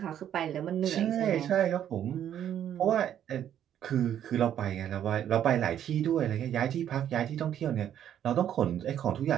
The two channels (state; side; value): quieter; left; 10.3 dB